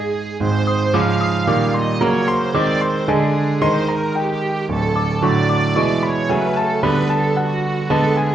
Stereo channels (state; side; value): normal; both; correlation 0.84